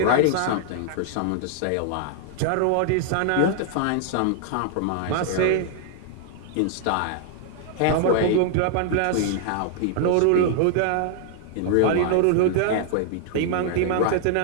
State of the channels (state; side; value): different; both; correlation 0.00